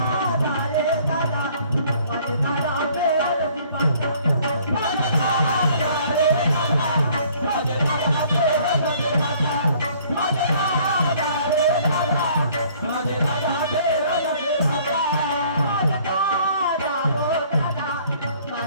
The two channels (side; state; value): both; inverted; correlation -0.58